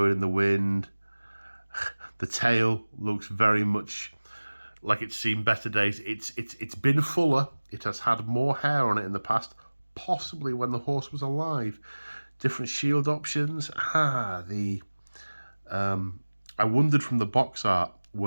in the wind. The tail looks very much like it's seen better days. It's been fuller. It has had more hair on it in the past, possibly when the horse was alive. Different shield options. I wondered from the box art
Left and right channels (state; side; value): inverted; both; correlation -1.00